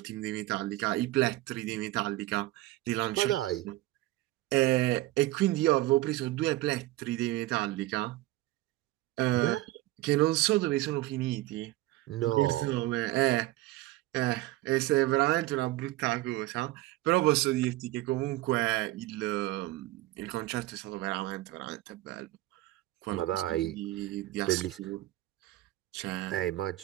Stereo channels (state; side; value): quieter; left; 17.3 dB